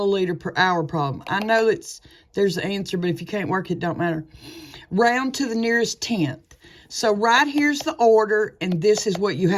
per hour problem. I know there's the answer, but if you can't work it, don't matter. Round to the nearest tenth. So right here's the order, and this is what you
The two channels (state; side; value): identical; both; correlation 1.00